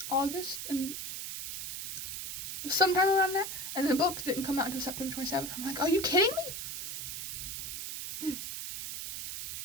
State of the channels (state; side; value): noise; right; hiss, 6 dB below the sound